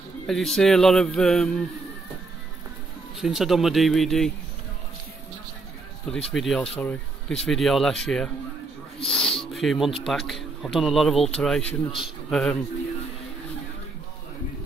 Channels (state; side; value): quieter; left; 3.6 dB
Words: As you see, a lot of since I've done my DVD, for this video, sorry, this video last year, a few months back, I've done a lot of alterations.